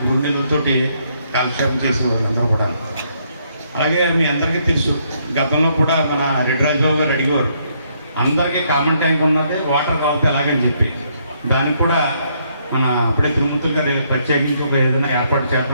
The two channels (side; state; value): both; inverted; correlation -0.72